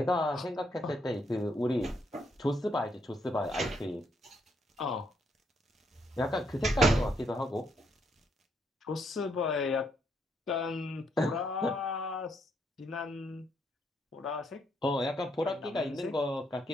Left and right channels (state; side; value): normal; both; correlation 0.74